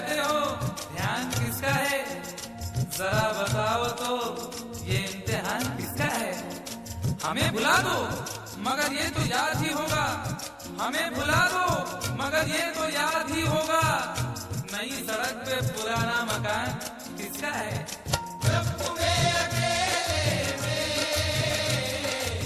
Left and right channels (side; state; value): both; identical; correlation 1.00